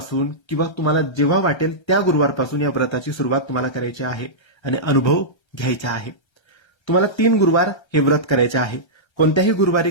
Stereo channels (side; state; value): right; late; 1.3 ms